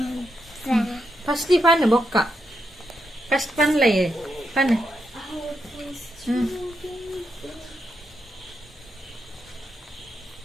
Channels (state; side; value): normal; both; correlation 0.83